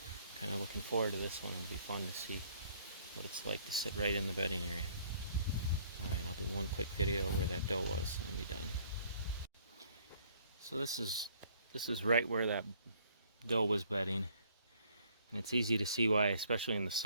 kind of looking forward to this one. It'll be fun to see what it's like to sit right in the bedding area. Alright, I'll do one quick video where that doe was and be done. So this is right where that doe was bedding, and it's easy to see why, especially in the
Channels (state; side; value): inverted; both; correlation -0.61